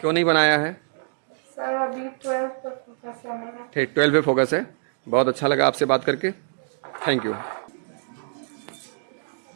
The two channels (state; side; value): silent; left; digital silence